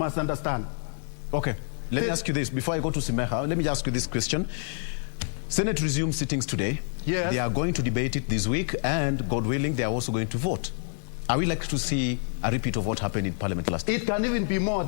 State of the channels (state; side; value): silent; right; 55 dB below the other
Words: understand. Okay, let me ask you this. Before I go to Simeha, let me ask you this question. Senate resumes sittings today. Yes. They are going to debate it this week, and God willing, they are also going to vote. Are we likely to see a repeat of what happened in Parliament last year? It can even be more